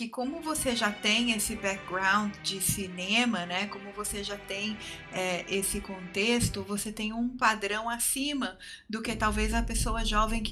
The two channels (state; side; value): identical; both; correlation 1.00